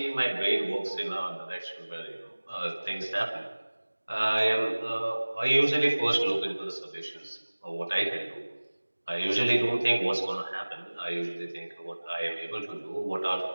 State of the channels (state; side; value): inverted; both; correlation -1.00